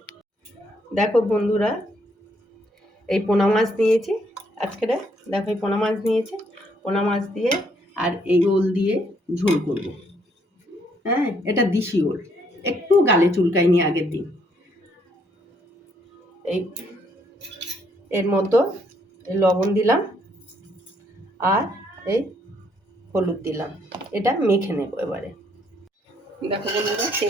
বন্ধুরা এই পোনা মাছ নিয়েছি আজকে। দেখো এই পোনা মাছ নিয়েছি, পোনা মাছ দিয়ে আর এই ওল দিয়ে ঝোল করব। হ্যাঁ, এটা দেশি ওল, একটু গালে চুলকায়নি আগের দিন। এই এর মতো লবণ দিলাম আর এই হলুদ দিলাম, এটা মেখে নেব এবারে। দেখো বন্ধুরা,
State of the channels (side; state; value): both; normal; correlation 0.70